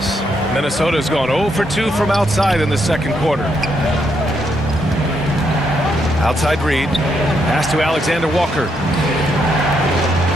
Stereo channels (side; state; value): both; normal; correlation 0.77